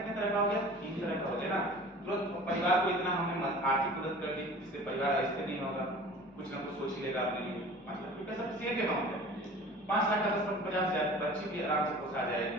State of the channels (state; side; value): normal; both; correlation 0.42